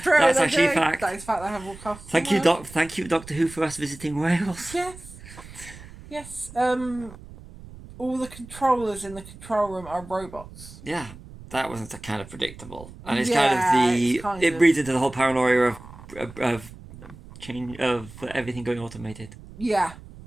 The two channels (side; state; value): right; noise; rumble, 17 dB below the sound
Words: That's actually a fact. That is fact. They have more castles. Thank you, Doctor Who, for us visiting Wales. Yes. All the controllers in the control room are robots. Yeah, that wasn't kind of predictable, and it's it breeds into the whole paranoia of change of everything going automated. Yeah.